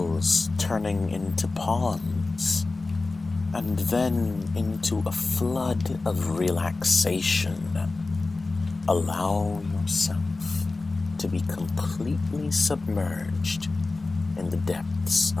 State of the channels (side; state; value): right; quieter; 3.5 dB